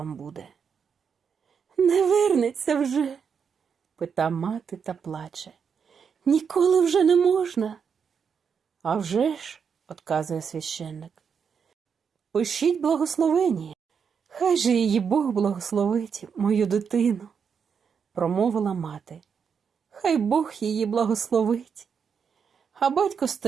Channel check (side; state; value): left; quieter; 6.6 dB